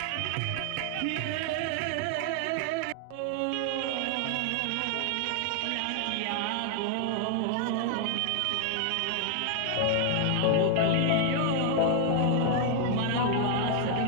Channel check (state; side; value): different; both; correlation 0.00